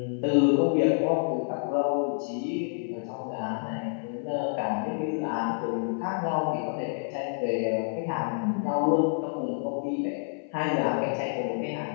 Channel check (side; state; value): right; silent; 59 dB below the other